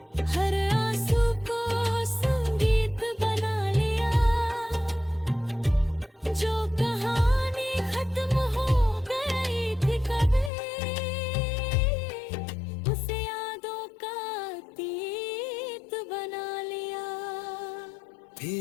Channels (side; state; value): right; drops out; at 10.5 s